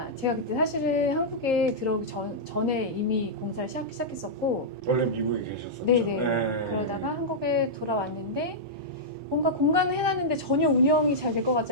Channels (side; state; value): both; normal; correlation -0.10